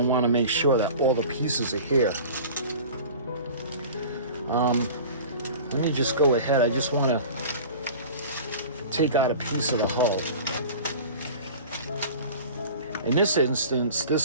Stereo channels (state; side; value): inverted; both; correlation -0.39